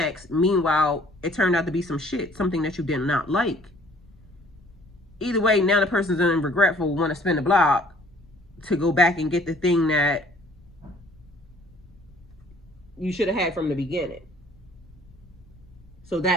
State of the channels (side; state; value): left; noise; rumble, 26 dB below the sound